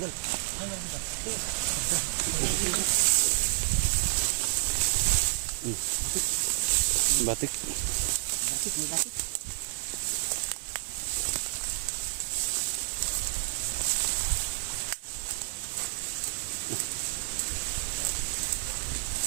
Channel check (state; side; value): silent; left; digital silence